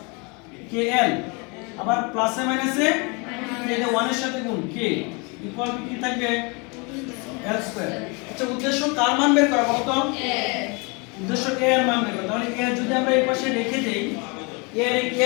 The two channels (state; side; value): quieter; right; 30.5 dB